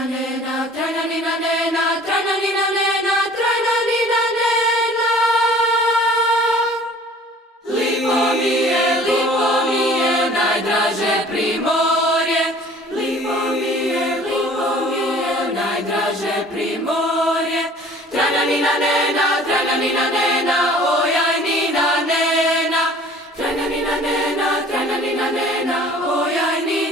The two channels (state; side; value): normal; both; correlation 0.49